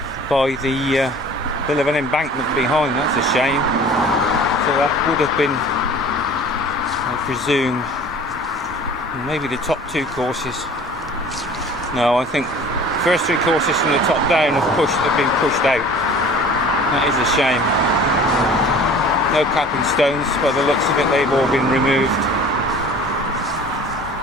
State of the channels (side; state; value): both; normal; correlation 0.45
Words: by the bit of an embankment behind. That's a shame. So that would have been, I presume, maybe the top 2 courses. No, I think first 3 courses from the top down have been pushed out. That is a shame. No capping stones, by the looks of it, they've all been removed.